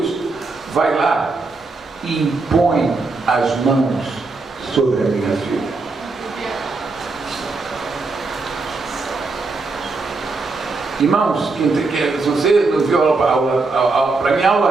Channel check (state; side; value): quieter; left; 3.8 dB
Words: vai lá e impõe as mãos sobre a minha filha. Irmãos, se você não viu para mim